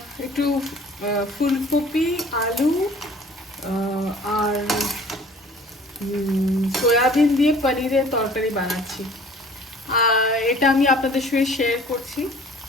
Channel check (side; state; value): both; normal; correlation 0.50